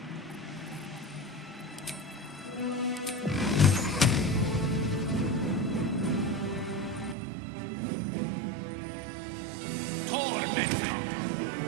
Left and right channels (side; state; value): left; drops out; at 7.2 s